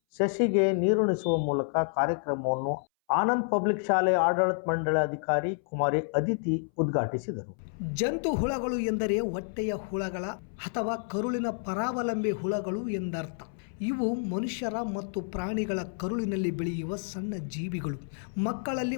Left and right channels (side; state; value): right; silent; 58 dB below the other